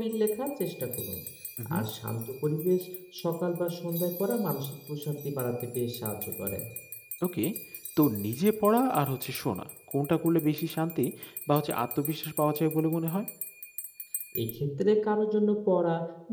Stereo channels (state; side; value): identical; both; correlation 1.00